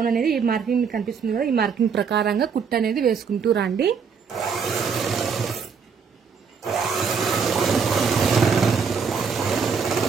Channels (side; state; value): left; quieter; 6.0 dB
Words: అనేది ఈ మార్కింగ్ మీకు కనిపిస్తుంది కదా, ఈ మార్కింగ్ ప్రకారంగా కుట్టు అనేది వేసుకుంటూ రండి.